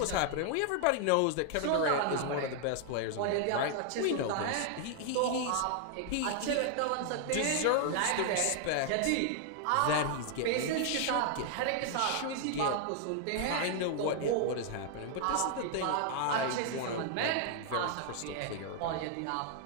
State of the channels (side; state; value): both; different; correlation 0.00